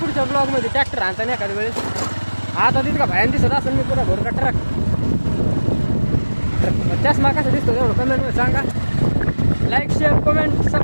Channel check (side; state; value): both; inverted; correlation -1.00